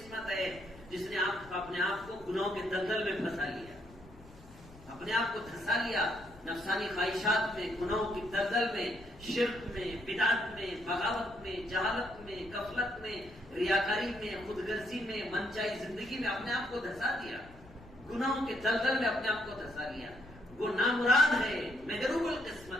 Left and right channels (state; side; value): noise; left; rumble, 21 dB below the sound